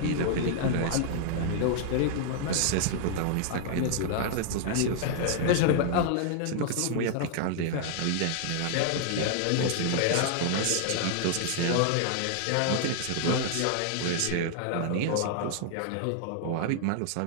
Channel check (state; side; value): different; both; correlation 0.00